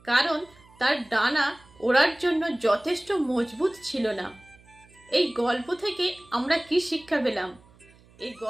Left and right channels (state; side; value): noise; right; hum, 27 dB below the sound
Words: কারণ তার ডানা ওড়ার জন্য যথেষ্ট মজবুত ছিল না। এই গল্প থেকে আমরা কি শিক্ষা পেলাম? এই